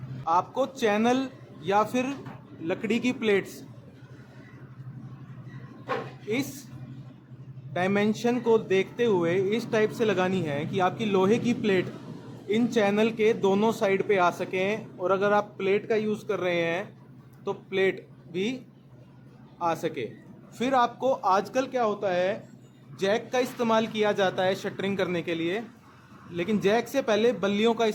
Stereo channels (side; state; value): both; identical; correlation 1.00